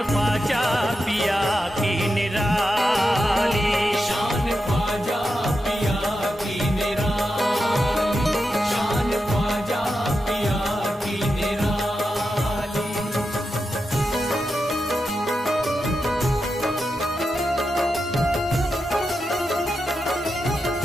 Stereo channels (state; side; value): normal; both; correlation 0.88